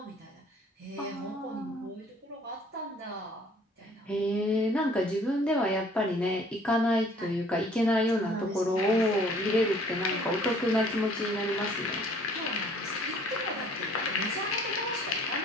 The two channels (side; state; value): both; normal; correlation 0.56